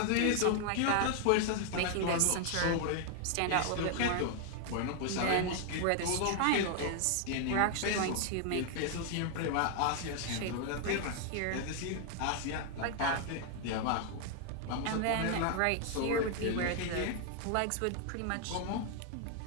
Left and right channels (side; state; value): both; different; correlation 0.00